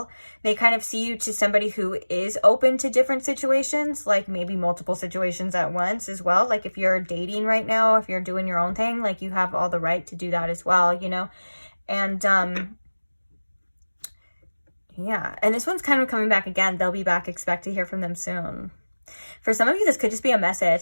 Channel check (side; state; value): both; inverted; correlation -1.00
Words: They kind of see you to somebody who is open to different situations, like maybe multiple situations at once as well. Like if you're dating right now, if you're doing your own thing, like you have all the right to do that as well, you know? And, yeah, and this one's kind of coming back again. They'll be back. Expect to hear from them soon. For some of you, this could just be a